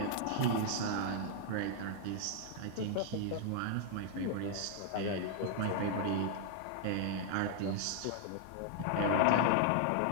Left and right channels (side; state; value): both; different; correlation -0.01